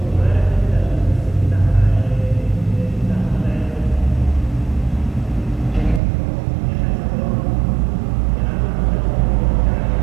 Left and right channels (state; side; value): drops out; left; at 6.0 s